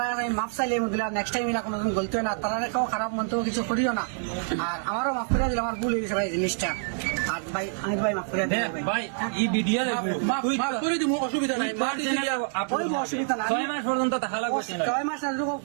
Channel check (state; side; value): silent; left; digital silence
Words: আমি মাপ চাইলে দিলাম নেক্সট টাইম এরা কোনোদিন গলতে হয় না, তারা কেউ খারাপ মন্তব্য কিছু করিও না। আর আমারও মাফ করে দিলাম, আমার ভুল হয়ে গেছে ভাই জিনিসটা। আর ভাই আমি ভাই মাফ করে দিলাম ভাই এই ভিডিও মাফ করে দিব, অসুবিধা নাই। অসুবিধা না, 6 মাস পর্যন্ত থাকা লাগবে না। 6 মাস